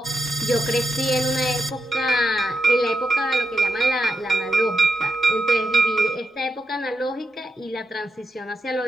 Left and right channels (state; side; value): normal; both; correlation 0.86